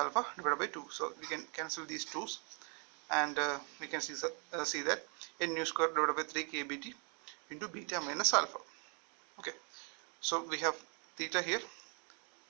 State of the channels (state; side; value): quieter; left; 37.4 dB